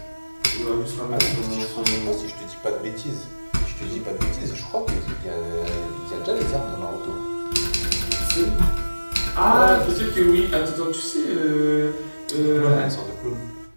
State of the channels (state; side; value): inverted; both; correlation -1.00